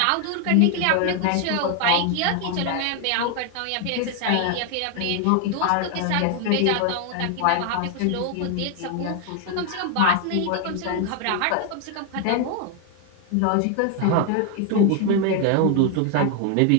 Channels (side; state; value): both; different; correlation 0.00